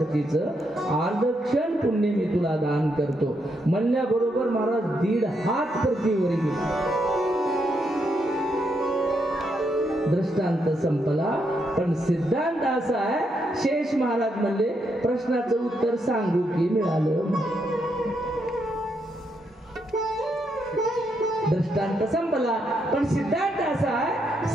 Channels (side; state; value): both; normal; correlation 0.79